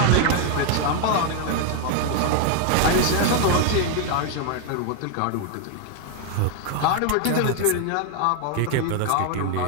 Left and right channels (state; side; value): different; both; correlation 0.00